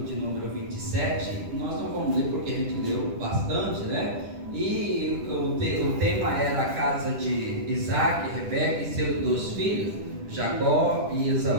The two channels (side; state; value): left; late; 10 ms